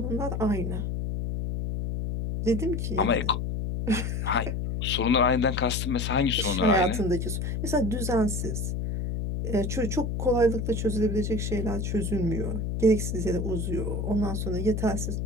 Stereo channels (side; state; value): left; noise; hum, 2 dB below the sound